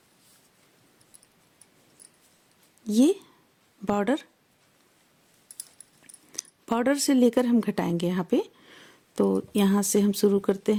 ये बॉर्डर से लेकर हम घटाएंगे यहाँ पे। तो यहाँ से हम शुरू करते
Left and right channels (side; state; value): both; identical; correlation 1.00